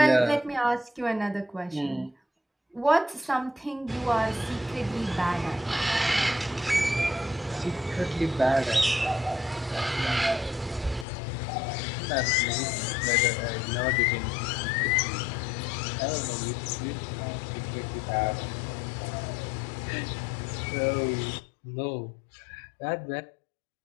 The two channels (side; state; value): right; drops out; at 11.1 s